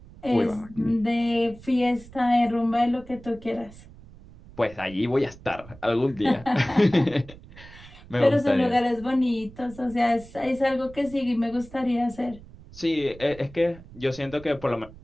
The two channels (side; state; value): right; noise; rumble, 19 dB below the sound